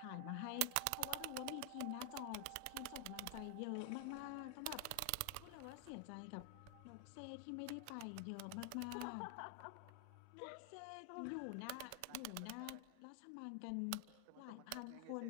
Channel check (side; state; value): both; different; correlation 0.00